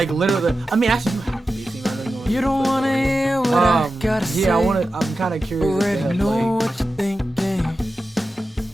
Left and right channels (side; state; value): both; normal; correlation 0.92